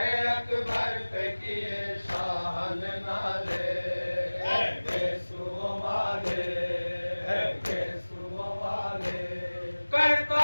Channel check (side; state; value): both; inverted; correlation -1.00